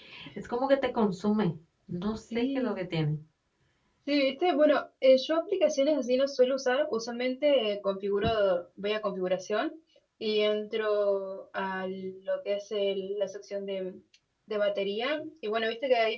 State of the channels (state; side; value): identical; both; correlation 1.00